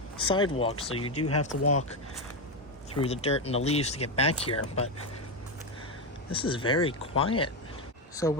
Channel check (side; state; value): both; normal; correlation 0.09